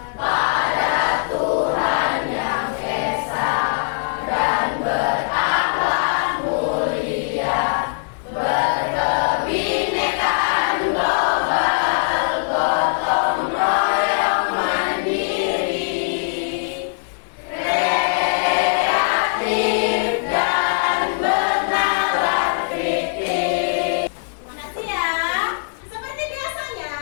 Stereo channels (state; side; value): silent; right; digital silence